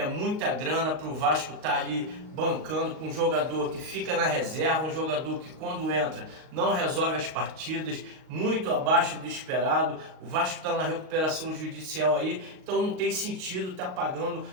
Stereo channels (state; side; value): late; left; 38 ms